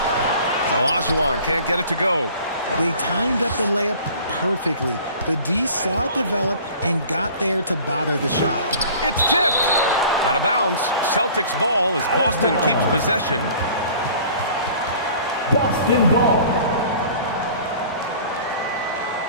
Olajuwon can't get it to go. They timed up the layup perfectly. The D saw it develop and got there to bother the shot. It's tipped. Out of bounds. Celtics ball as Boston keeps possession. Boston ball.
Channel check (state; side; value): inverted; both; correlation -0.47